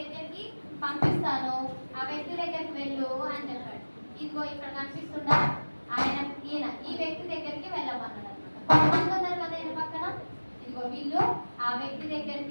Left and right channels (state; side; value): inverted; both; correlation -1.00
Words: పంపిస్తాను, ఆ వ్యక్తి దగ్గరికి వెళ్ళు అని చెప్పాడు. ఇదిగో ఇక్కడ కనిపిస్తుందా ఈ వ్యక్తి దగ్గరికి వెళ్ళమన్నాడు అనమాట. కొంతమంది ఉన్నారు కదా ఈయన పక్కన, ఇదిగో వీళ్ళు ఆ వ్యక్తి